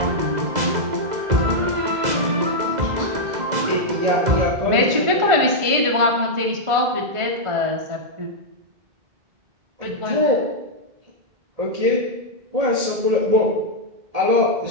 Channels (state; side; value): late; left; 1.5 ms